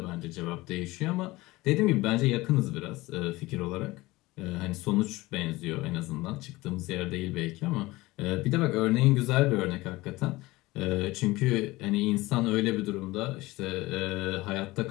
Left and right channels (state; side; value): quieter; right; 20.1 dB